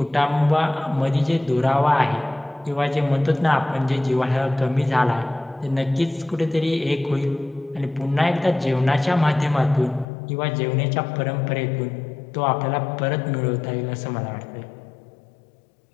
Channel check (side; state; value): right; drops out; at 10.1 s